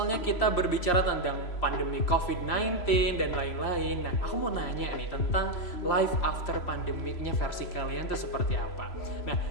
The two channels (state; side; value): late; right; 3.0 ms